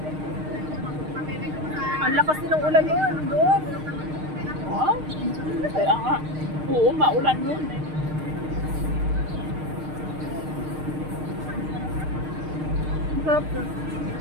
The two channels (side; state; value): left; late; 6.5 ms